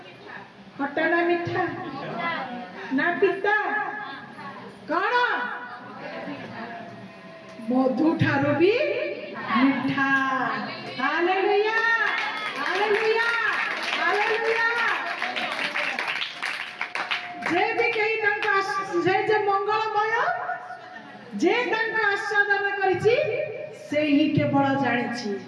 खट्टा ना मीठा ना पिता कौन मधु ठारो भी मीठा हालेलुया हालेलुया हालेलुया जे भी कही तंका जे मंगलमय जे तंका आस्वादन करिछि से ही केवल जानिछि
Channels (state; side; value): identical; both; correlation 1.00